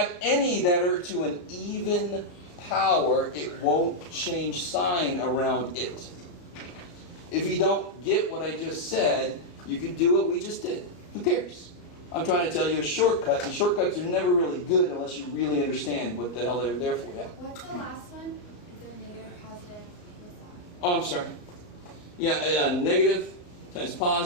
any that are to an even power, it won't change sign around it. If you don't get what I just said, you could do what we just did. Who cares? I'm trying to tell you a shortcut, and shortcuts are never really good unless you really understand what the hell they're there for. Yeah. What's the last one? Is it negative, positive? What's that? Oh, I'm sorry. Yeah, negative times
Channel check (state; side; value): late; right; 34 ms